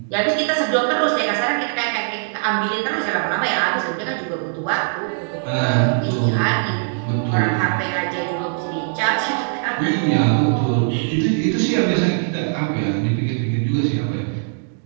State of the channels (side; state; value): left; silent; digital silence